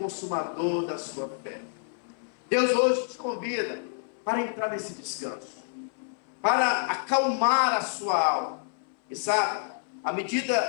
da sua fé. Deus hoje te convida para entrar nesse descanso, para acalmar a sua alma. E sabe, à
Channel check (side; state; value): right; silent; 59 dB below the other